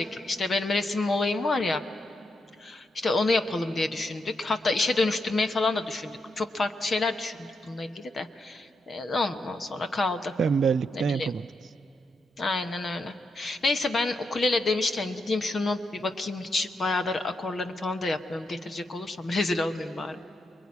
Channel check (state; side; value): normal; both; correlation 0.82